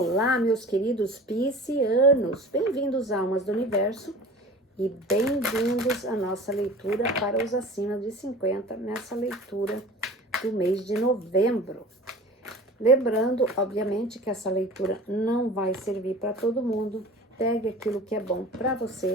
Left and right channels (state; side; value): normal; both; correlation 0.40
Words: Olá, meus queridos piscianos, bem-vindos, almas do universo, e bem-vindos à nossa leitura para os acima de 50, nessa leitura do mês de novembro. Lembrando, obviamente, que essa leitura não vai servir para todo mundo. Pegue aquilo que é bom para